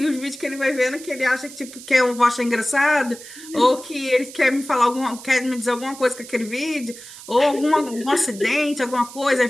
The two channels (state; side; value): noise; right; hiss, 16 dB below the sound